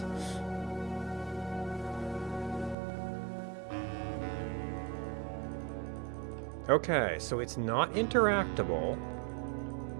Okay, so it's not interactable,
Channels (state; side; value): drops out; left; at 2.8 s